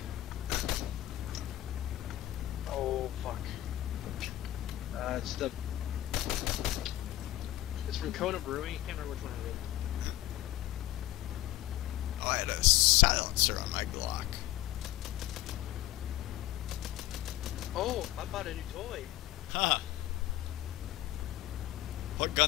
Oh, fuck. It's from Kona Brewing. I can't remember which one it is. Oh, I had a silencer on my Glock. Oh, I bought a new toy. Huh. What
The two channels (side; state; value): right; quieter; 14.7 dB